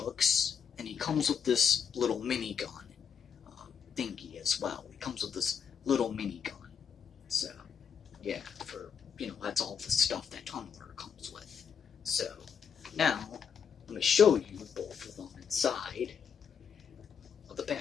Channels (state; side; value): quieter; right; 7.1 dB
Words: and he comes with this little minigun thingy as well. He comes with this little minigun. So, yeah, that's all the stuff that Tunneler comes with. So, now, let me show you both of them inside of the